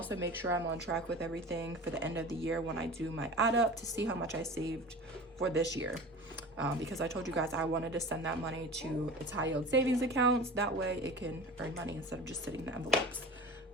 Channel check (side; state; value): both; normal; correlation 0.36